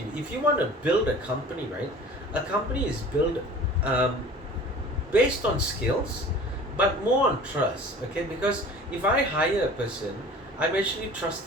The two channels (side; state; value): both; normal; correlation 0.43